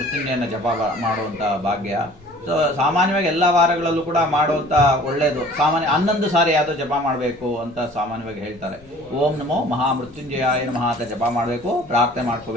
ಜಪ ಮಾಡುವಂಥ ಭಾಗ್ಯ. ಸೊ ಸಾಮಾನ್ಯವಾಗಿ ಎಲ್ಲ ವಾರಗಳಲ್ಲೂ ಕೂಡ ಮಾಡುವಂಥ ಒಳ್ಳೆಯದು. ಸಾಮಾನ್ಯ 11 ಸಾರಿ ಯಾವುದೋ ಜಪ ಮಾಡಬೇಕು ಅಂತ ಸಾಮಾನ್ಯವಾಗಿ ಹೇಳ್ತಾರೆ. ಓಂ ನಮೋ ಮಹಾಮೃತ್ಯುಂಜಯಾಯ ನಮಃ ಅಂತ ಜಪ ಮಾಡಬೇಕು, ಪ್ರಾರ್ಥನೆ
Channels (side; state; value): left; noise; rumble, 26 dB below the sound